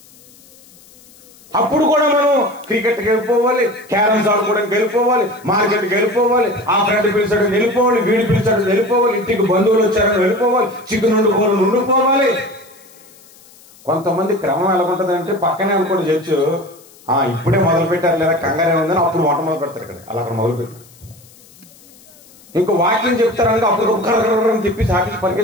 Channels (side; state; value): left; noise; hiss, 25 dB below the sound